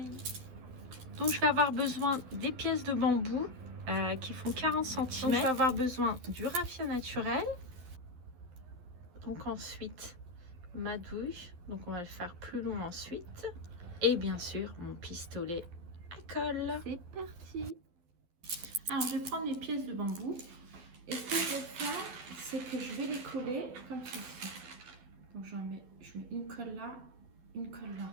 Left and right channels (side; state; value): left; late; 11 ms